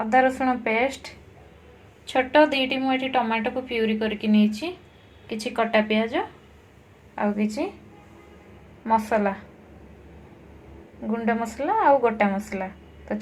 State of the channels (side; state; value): both; identical; correlation 1.00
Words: रसुण पेस्ट छोट दुईटी मुझे टमाटो को प्यूरी करके नहीं किछि कटा प्याज आउ किछि मसला गुंड मसला आउ गोटा मसला। तो